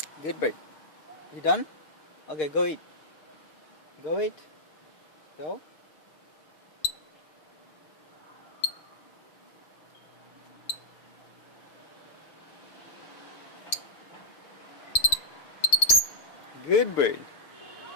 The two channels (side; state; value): right; late; 6.8 ms